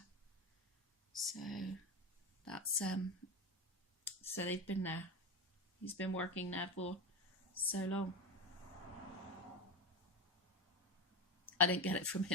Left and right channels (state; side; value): normal; both; correlation 0.18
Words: so that's so they've been there. He's been working there for so long. I didn't get it from